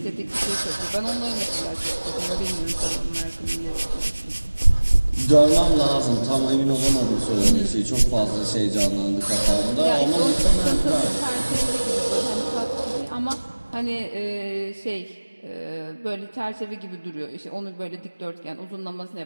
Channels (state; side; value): inverted; both; correlation -1.00